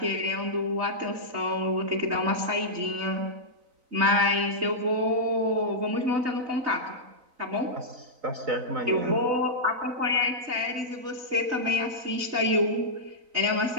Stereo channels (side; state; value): left; late; 3.9 ms